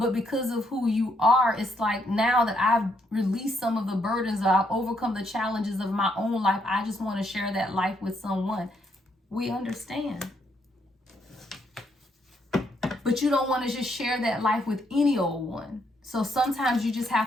because of who you are, it's like now that I've released some of the burdens, I've overcome the challenges of my own life, I just want to share that life with someone. We understand. But you don't want to just share that life with any old one. So sometimes you just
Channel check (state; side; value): normal; both; correlation 0.74